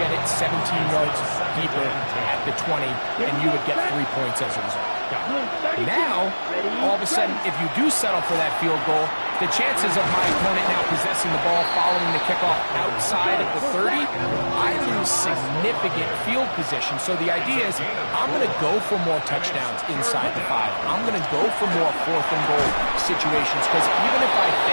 it 17 yards deeper at the 20, and you would get 3 points as a result. Now, all of a sudden, if you do settle for that field goal, the chances of my opponent now possessing the ball following the kickoff outside of the 30, I lose significant field position. So the idea is I'm going to go for more touchdowns inside the 5. I'm going to go for more 4th and goal situations, because even if I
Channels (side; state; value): both; inverted; correlation -1.00